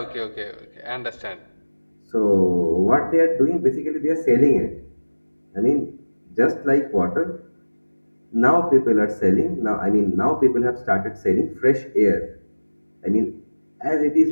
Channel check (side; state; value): both; inverted; correlation -1.00